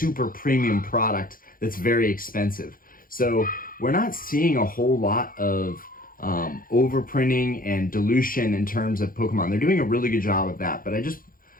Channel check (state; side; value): late; right; 0.41 ms